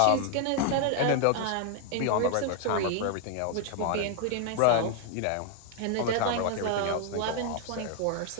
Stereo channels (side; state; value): both; different; correlation 0.00